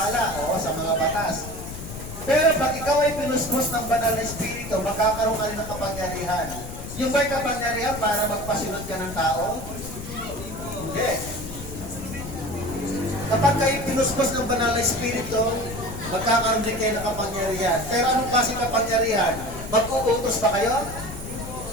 o sa mga batas. Pero pag ikaw ay pinuspos ng banal na Espiritu, magkakaroon ka rin ng kapangyarihan. Yung ba'y kapangyarihan para magpasunod ka ng tao? Hindi. Kapag kayo pinuspos ng banal na Espiritu, magkakaroon din kayo ng kapangyarihan. Pero anong klaseng kapangyarihan? Mag-uutos ba kayo?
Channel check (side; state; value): left; noise; rumble, 10 dB below the sound